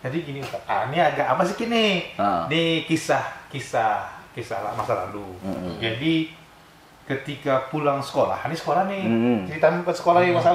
Jadi gini Ustaz, ini agak apa sih kini? Ini kisah masa lalu. Jadi ketika pulang sekolah, ini sekolah nih, cerita ke sekolah ya Mas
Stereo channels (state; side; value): identical; both; correlation 1.00